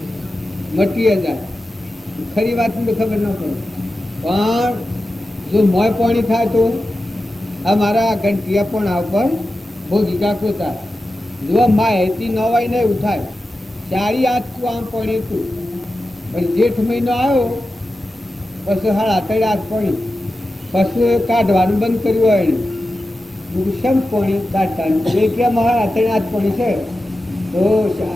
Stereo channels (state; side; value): normal; both; correlation 0.92